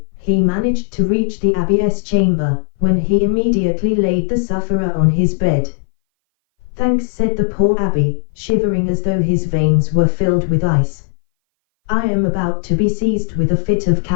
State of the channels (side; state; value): right; silent; 60 dB below the other